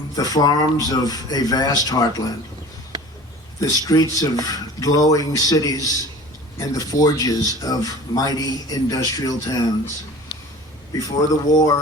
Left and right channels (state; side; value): normal; both; correlation 0.42